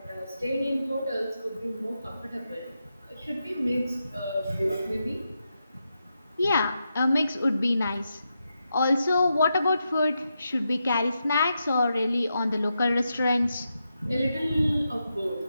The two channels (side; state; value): both; inverted; correlation -0.86